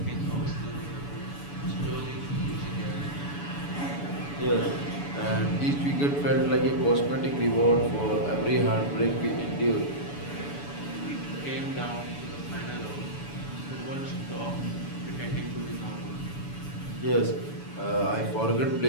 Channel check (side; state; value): right; late; 7.0 ms